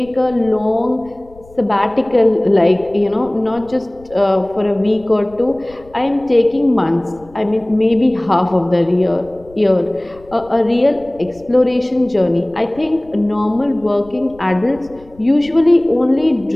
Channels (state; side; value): noise; left; rumble, 24 dB below the sound